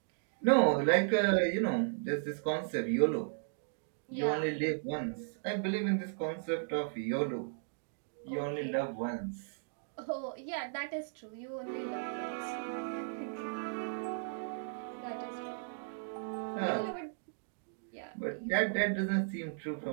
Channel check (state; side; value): silent; left; digital silence